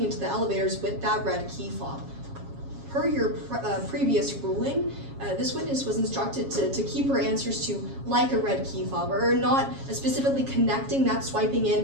into the elevators with that red key fob. Per your previous ruling, this witness was instructed to keep her answers to like a red key fob, or not specifically connecting that swiping in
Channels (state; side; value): late; left; 7.3 ms